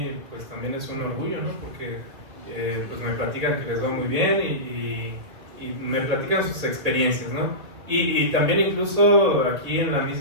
pues también es un orgullo, ¿no? Porque pues me platican que les va muy bien y me platican sus experiencias, ¿no? Y también incluso aquí en la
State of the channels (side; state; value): left; late; 2.4 ms